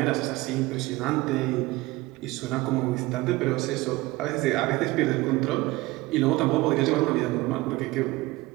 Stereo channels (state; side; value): quieter; left; 20.1 dB